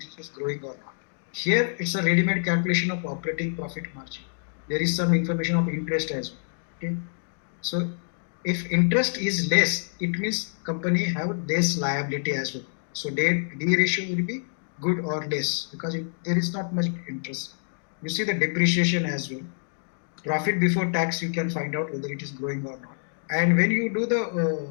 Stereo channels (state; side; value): silent; right; digital silence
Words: is growing or not. Here, it's a ready-made calculation of operating profit margin. There is some information of interest as well. Okay, so if interest is less, it means company have less liability as well. So D ratio will be good or less because there is not much interest. You see the depreciation as well. Profit before tax, you can find out whether it is growing or not. And when you do the